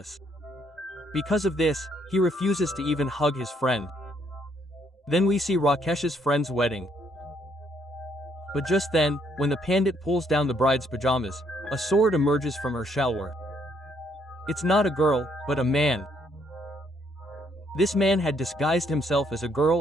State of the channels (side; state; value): both; normal; correlation 0.70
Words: Because of this, he refuses to even hug his friend. Then we see Rakesh's friend's wedding. But just then, when the pandit pulls down the bride's pajamas, a sword emerges from her shalwar. It's not a girl, but a man. This man had disguised himself as a